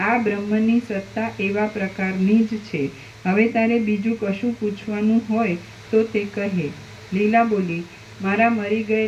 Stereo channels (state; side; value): identical; both; correlation 1.00